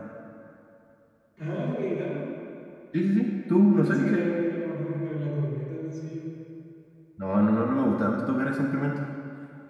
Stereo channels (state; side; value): identical; both; correlation 1.00